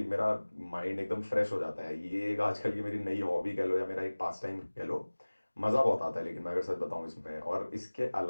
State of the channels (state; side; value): inverted; both; correlation -1.00